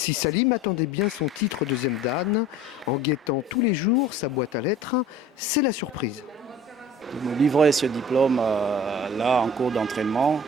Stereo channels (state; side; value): normal; both; correlation 0.45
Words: Salim attendait bien son titre 2e dan, en guettant tous les jours sa boîte à lettres, c'est la surprise. De me livrer ce diplôme là en cours d'entraînement,